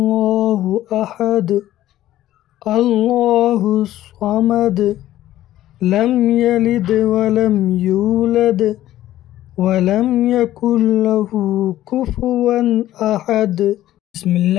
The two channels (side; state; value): right; quieter; 13.8 dB